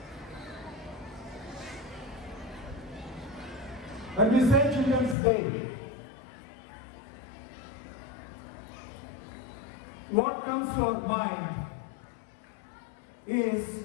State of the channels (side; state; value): right; drops out; at 5.2 s